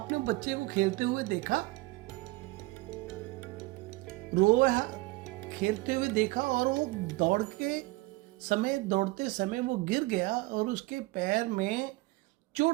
बच्चे को खेलते हुए देखा, खेलते हुए देखा और वो दौड़ते समय वो गिर गया और उसके पैर में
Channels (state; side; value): quieter; left; 21.4 dB